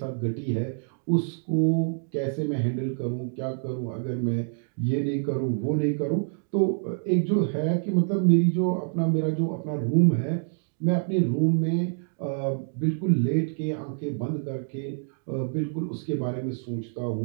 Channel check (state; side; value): silent; left; digital silence